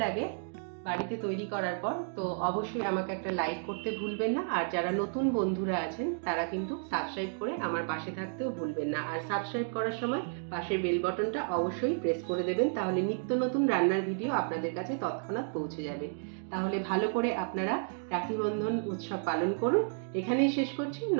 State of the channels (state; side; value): silent; left; digital silence